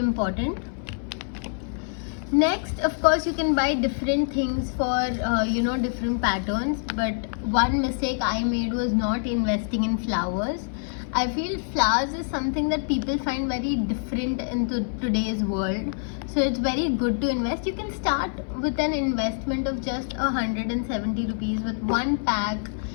Next, of course, you can buy different things for different patterns, but one mistake I made was not investing in flowers. I feel flowers is something that people find very different in today's world, so it's very good to invest. You can start with an investment of just 170 rupees with one pack,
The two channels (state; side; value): silent; right; 59 dB below the other